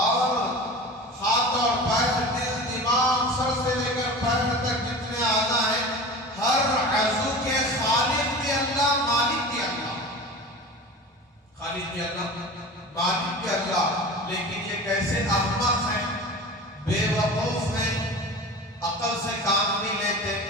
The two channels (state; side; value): normal; both; correlation 0.34